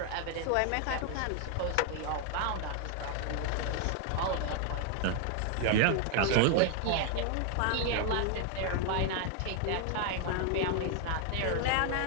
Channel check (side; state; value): both; different; correlation 0.00